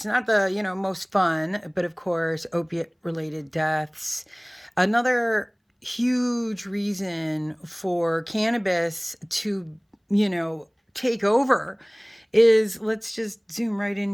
not the most fun, but of course opiate related deaths. Another huge reason for cannabis to take over is, let's just zoom right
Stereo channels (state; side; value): identical; both; correlation 1.00